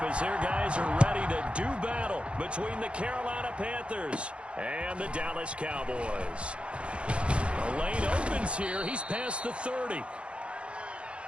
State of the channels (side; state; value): left; late; 0.059 ms